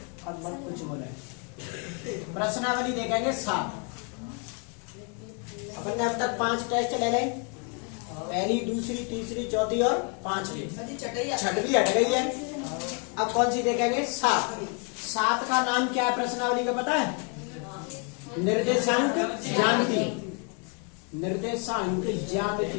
अब मत कुछ बोले। प्रश्नावली देखेंगे 7। अपन ने अब तक 5 टेस्ट ले लें, पहली, दूसरी, तीसरी, चौथी और 5वीं, छठवीं हट गई है। अब कौन सी देखेंगे? 7। 7 का नाम क्या है प्रश्नावली का पता है? निर्देशांक ज्यामिति। निर्देशांक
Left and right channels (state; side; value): quieter; right; 36.6 dB